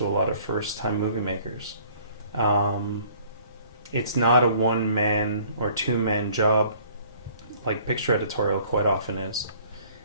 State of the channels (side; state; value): both; inverted; correlation -0.56